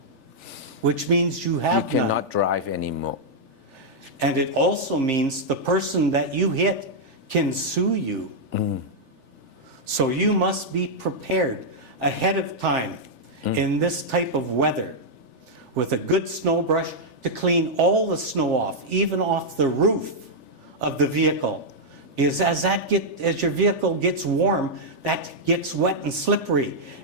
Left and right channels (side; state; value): left; late; 3.4 ms